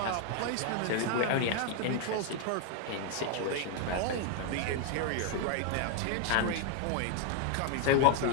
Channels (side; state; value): both; different; correlation 0.01